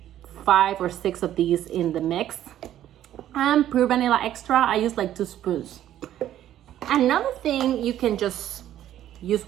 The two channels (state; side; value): quieter; left; 12.0 dB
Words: 5 or 6 of these in the mix. And pure vanilla extra, I use like 2 spoons. Another thing you can just use